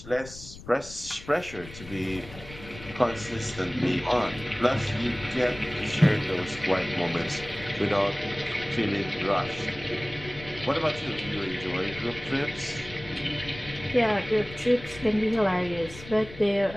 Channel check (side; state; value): left; noise; rumble, 16 dB below the sound